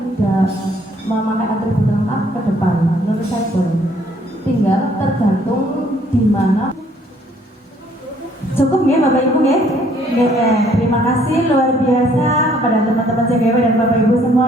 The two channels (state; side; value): normal; both; correlation 0.63